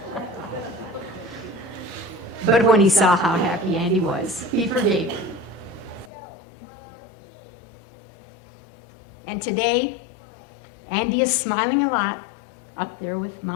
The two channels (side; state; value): right; drops out; at 6.1 s